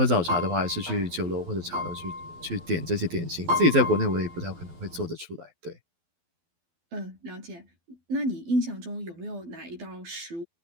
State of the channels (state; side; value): late; left; 12 ms